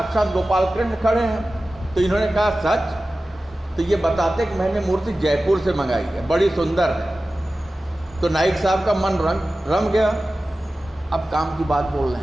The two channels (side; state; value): both; normal; correlation 0.95